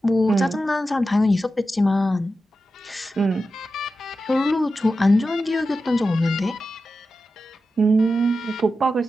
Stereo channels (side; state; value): both; normal; correlation 0.91